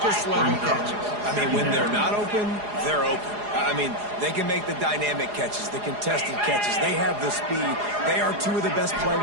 catches. I mean, when they're not open, they're open. I mean, they can make the dynamic catches, the contested catches. They have the speed. They are two of the best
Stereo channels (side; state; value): left; late; 4.8 ms